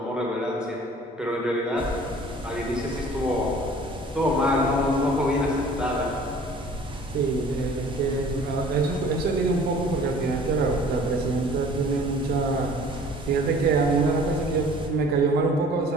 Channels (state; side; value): normal; both; correlation 0.49